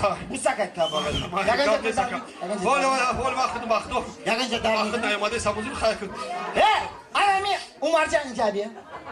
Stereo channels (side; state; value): both; identical; correlation 1.00